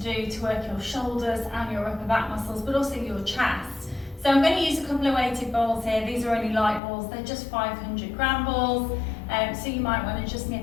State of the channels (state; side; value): drops out; right; at 6.8 s